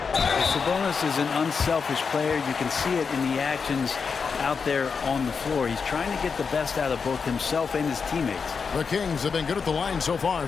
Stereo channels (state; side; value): quieter; right; 5.5 dB